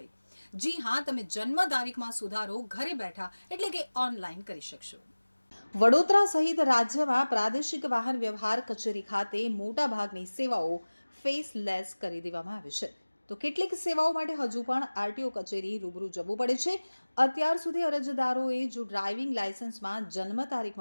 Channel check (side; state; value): both; inverted; correlation -1.00